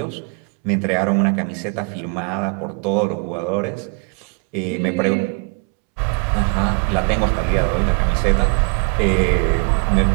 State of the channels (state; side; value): quieter; left; 35.0 dB